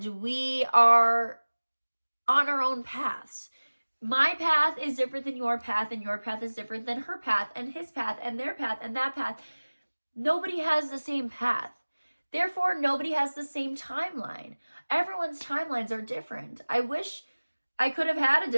we are on our own paths. My path is different than your path, and your path is different than her path, and his path, and their path, and that path. Nobody has the same path. Therefore, nobody has the same timeline. Everyone's timelines are different. I wish I could have had a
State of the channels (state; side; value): inverted; both; correlation -1.00